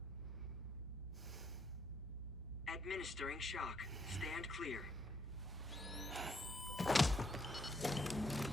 Administering shock. Stand clear.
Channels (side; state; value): both; normal; correlation 0.72